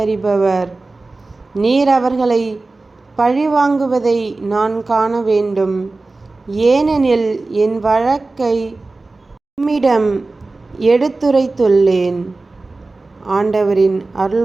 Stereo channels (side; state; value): left; quieter; 3.4 dB